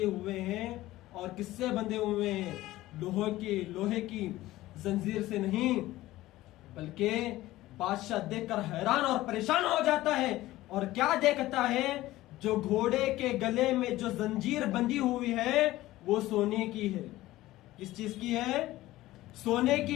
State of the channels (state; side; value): quieter; right; 16.6 dB